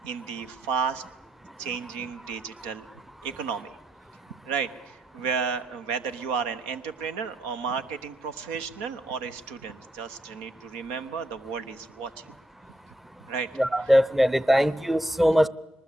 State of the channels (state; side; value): normal; both; correlation 0.78